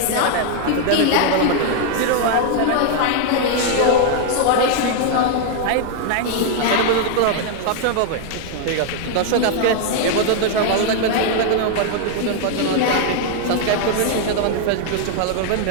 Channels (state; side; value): different; both; correlation 0.00